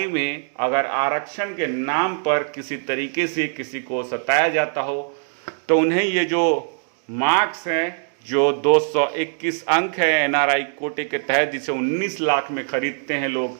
में अगर आरक्षण के नाम पर किसी तरीके से किसी को सताया जाता हो तो उन्हें ये जो मार्क्स हैं, जो 221 अंक है एनआरआई कोटे के तहत, जिसे 19 लाख में खरीदते हैं लोग,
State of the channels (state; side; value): silent; left; digital silence